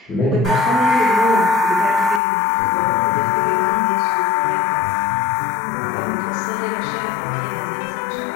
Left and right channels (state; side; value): drops out; right; at 2.2 s